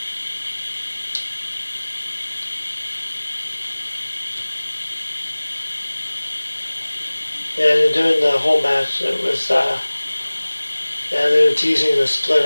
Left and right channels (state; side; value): inverted; both; correlation -1.00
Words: Yeah, and during the whole match, it was, they were teasing the split